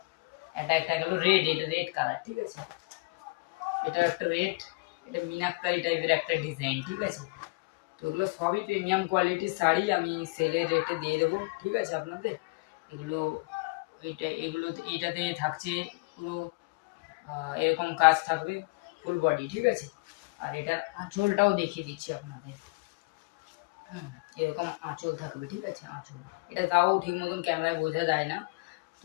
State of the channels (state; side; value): quieter; right; 27.2 dB